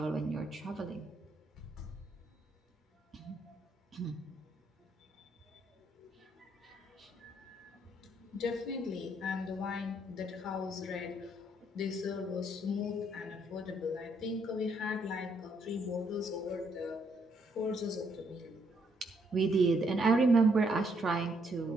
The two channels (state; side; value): normal; both; correlation 0.72